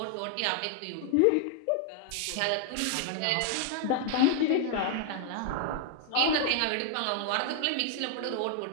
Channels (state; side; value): different; both; correlation 0.00